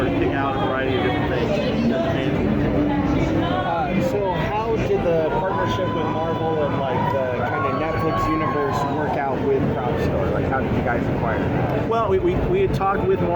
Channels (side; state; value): both; identical; correlation 1.00